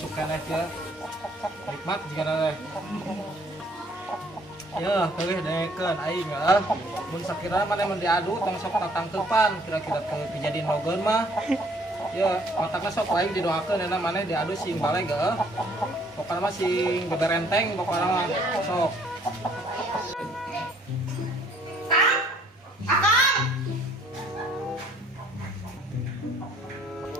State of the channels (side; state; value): both; normal; correlation 0.61